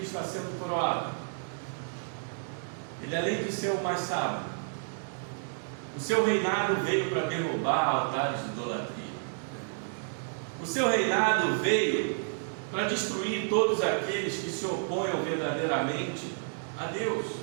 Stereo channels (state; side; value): silent; left; 57 dB below the other